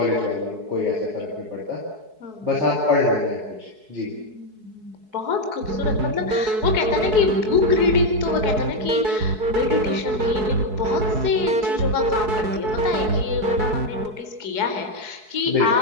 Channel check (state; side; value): late; left; 4.7 ms